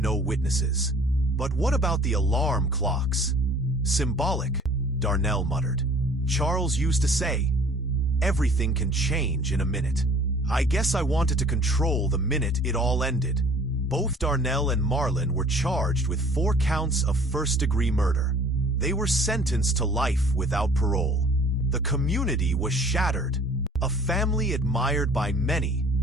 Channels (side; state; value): both; normal; correlation 0.51